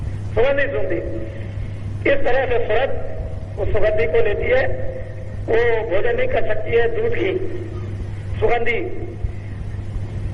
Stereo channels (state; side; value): identical; both; correlation 1.00